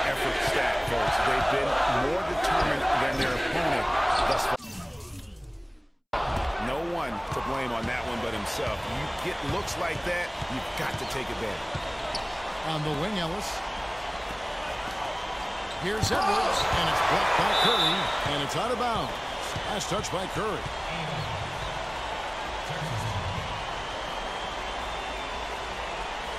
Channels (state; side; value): identical; both; correlation 1.00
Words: effort stat, folks. They've been more determined than their opponent thus far. No one to blame on that one but himself. You get looks like that, you've got to take advantage. On the wing, Ellis. Here's Edwards, and it's blocked by Curry, and it's out of bounds. Last touch by Curry.